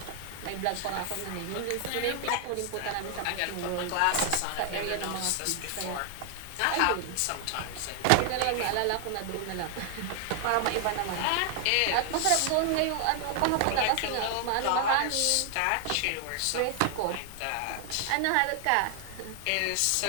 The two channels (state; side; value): different; both; correlation 0.00